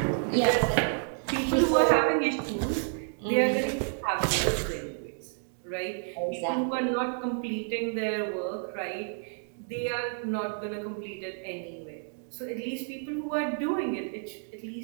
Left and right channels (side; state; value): left; silent; 58 dB below the other